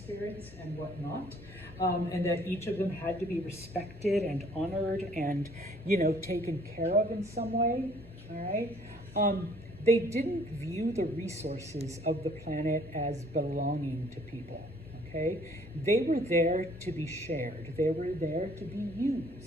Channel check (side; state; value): both; normal; correlation 0.59